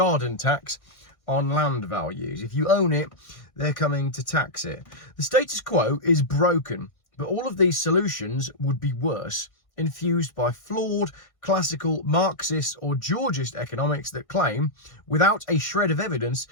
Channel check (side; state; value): right; late; 1.6 ms